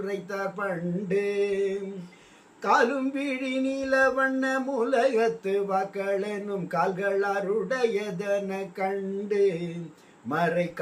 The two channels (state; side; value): identical; both; correlation 1.00